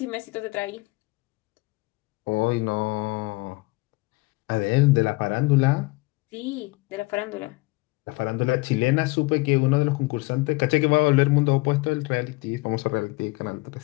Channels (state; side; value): quieter; right; 23.8 dB